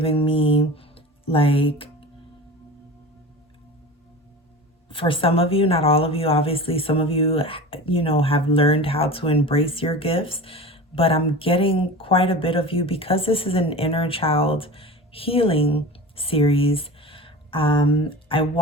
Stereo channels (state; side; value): normal; both; correlation 0.34